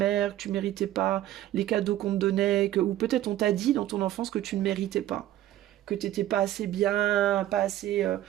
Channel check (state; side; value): quieter; left; 13.3 dB